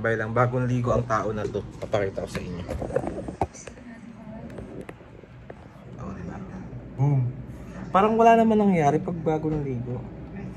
lang, bagong ligo ang tao na to. Papakita ko sa inyo. Oh, diba? Boom! Parang wala naman nangyari pag bago ng ligo.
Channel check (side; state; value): both; identical; correlation 1.00